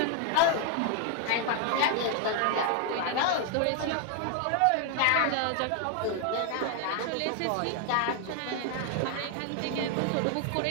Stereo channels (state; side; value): different; both; correlation 0.00